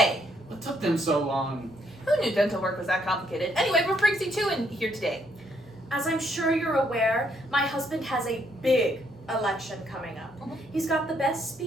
What took them so long? Who knew dental work was that complicated? Anyway, what brings you two in here today? As I'm sure you're aware, my husband has a big election coming up. Mhm. He's got the best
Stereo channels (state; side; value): normal; both; correlation 0.72